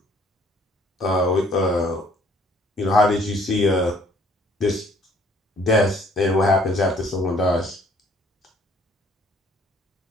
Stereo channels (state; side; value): normal; both; correlation 0.60